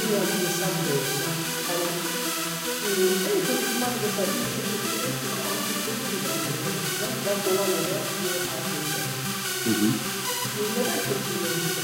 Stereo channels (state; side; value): identical; both; correlation 1.00